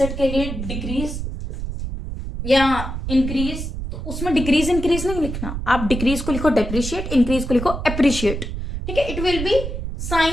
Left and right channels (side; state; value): right; noise; rumble, 5 dB below the sound